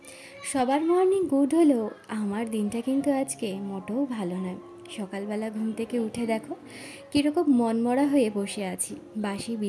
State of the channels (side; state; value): both; identical; correlation 1.00